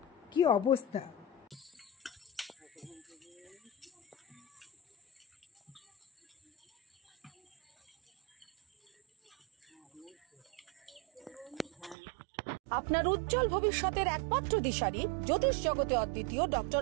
কি অবস্থা। আপনার উজ্জ্বল ভবিষ্যতের একমাত্র দিশারি, জ্যোতিষ জগতে অদ্বিতীয় ডক্টর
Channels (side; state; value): left; drops out; at 12.0 s